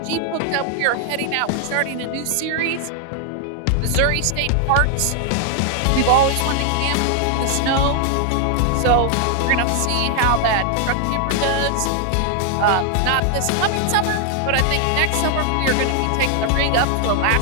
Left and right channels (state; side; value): different; both; correlation 0.00